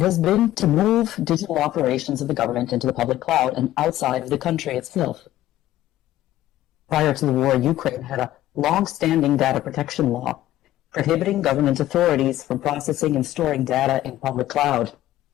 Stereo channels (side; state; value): right; quieter; 14.2 dB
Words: has been to move digital operations of the government into the public cloud and outside of the country itself. Prior to the war, Ukraine had a long-standing data protection law prohibiting government authorities from processing and storing data in public cloud.